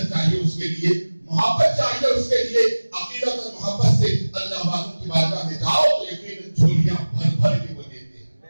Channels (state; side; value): inverted; both; correlation -1.00